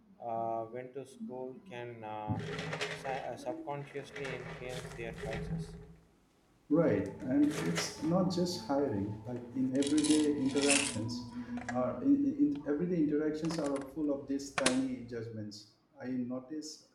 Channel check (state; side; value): identical; both; correlation 1.00